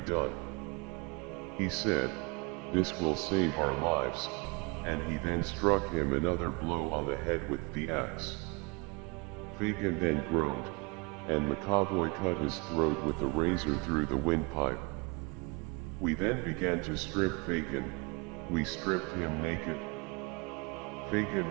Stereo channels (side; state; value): left; quieter; 28.8 dB